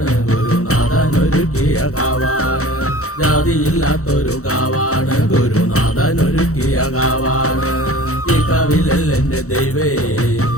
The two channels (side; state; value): right; late; 0.65 ms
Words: ഗുരുനാഥനൊരുക്കിയ കാവാണ്. ജാതിയില്ലാത്തൊരു കാവാണ്, ഗുരുനാഥനൊരുക്കിയ കാവാണ്. ഈ കാവിലെന്റെ ദൈവേ